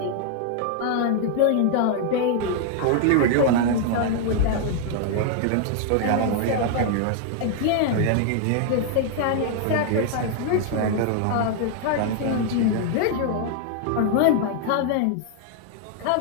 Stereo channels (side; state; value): both; different; correlation 0.00